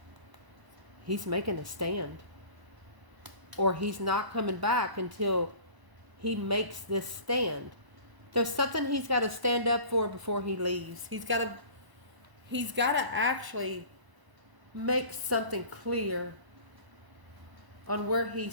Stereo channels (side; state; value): left; late; 1.0 ms